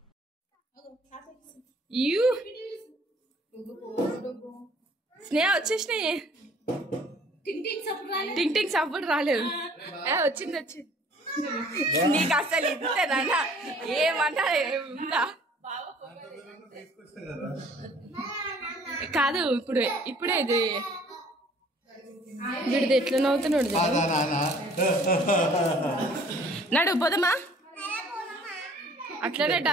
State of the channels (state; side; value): normal; both; correlation 0.55